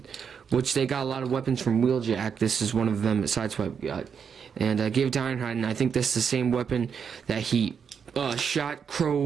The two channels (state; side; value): quieter; left; 6.9 dB